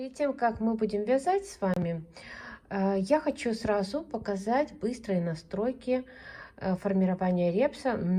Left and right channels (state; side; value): identical; both; correlation 1.00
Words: тем, как мы будем вязать с вами, я хочу сразу показать быстрые настройки формирования репса